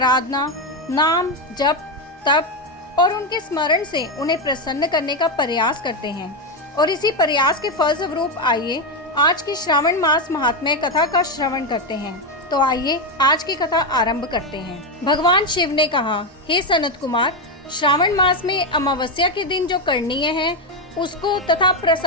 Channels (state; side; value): normal; both; correlation 0.08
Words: नाम जप, तप और उनके स्मरण से उन्हें प्रसन्न करने का प्रयास करते हैं। और इसी प्रयास के फलस्वरूप आइए आज की श्रावण मास महात्म्य कथा का श्रवण करते हैं। तो आइए आज की कथा आरंभ करते हैं। भगवान शिव ने कहा, हे सनत कुमार, श्रावण मास में अमावस्या के दिन जो करणीय है उसको तथा